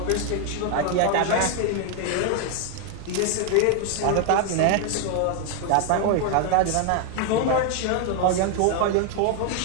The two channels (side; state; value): both; different; correlation 0.01